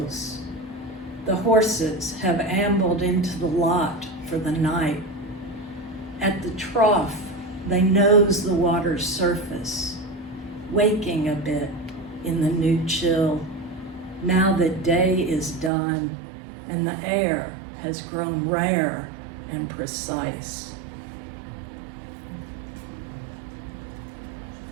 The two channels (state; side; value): drops out; left; at 15.7 s